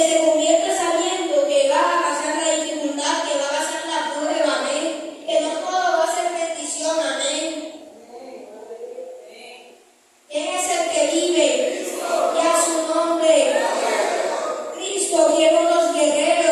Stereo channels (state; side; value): identical; both; correlation 1.00